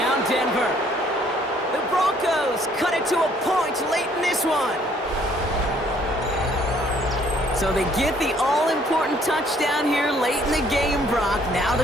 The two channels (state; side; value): normal; both; correlation 0.62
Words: Denver. The Broncos cut it to a point late in this one. So they get the all-important touchdown here late in the game, Brock. Now